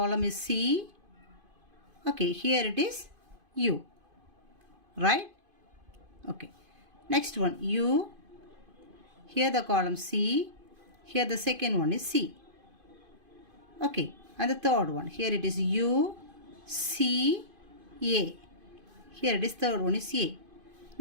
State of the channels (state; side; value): late; left; 2.5 ms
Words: is C. Okay, here it is U, right? Okay, next one U, here the column C, here the second one is C. Okay, and the third one, here it is U, C, A. Here it is third one is A.